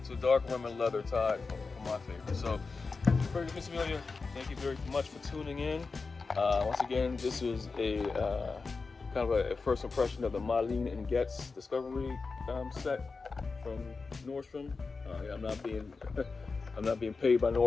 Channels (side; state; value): right; quieter; 4.3 dB